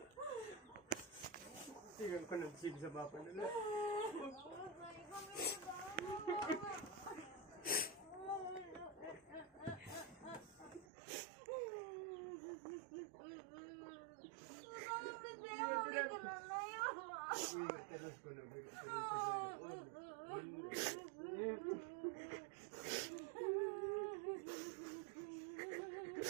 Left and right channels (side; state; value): left; drops out; at 10.9 s